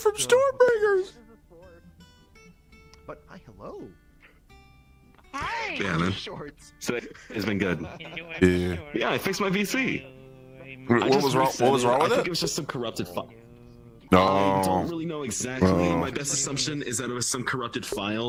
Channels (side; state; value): both; identical; correlation 1.00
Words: Stormbringers. But hi, hello. Hi. Yeah, man. Shorts. So it's been good. Yeah. Yeah, I fixed my VC. What was wrong? What was wrong with I think it? it was just some corrupted file. No. I don't really know exactly. Oh. My best assumption is that it was some corrupted